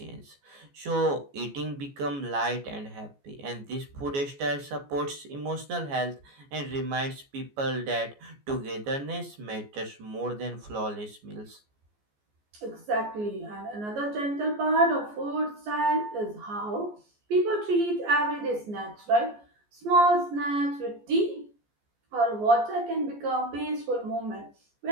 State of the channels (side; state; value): left; late; 14 ms